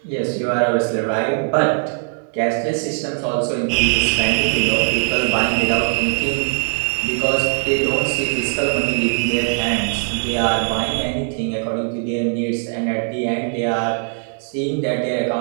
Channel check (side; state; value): left; silent; 55 dB below the other